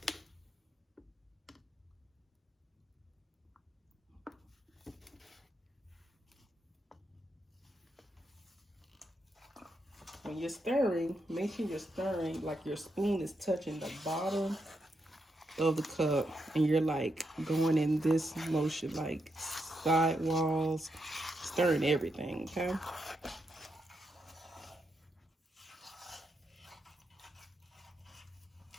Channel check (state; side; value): normal; both; correlation 0.82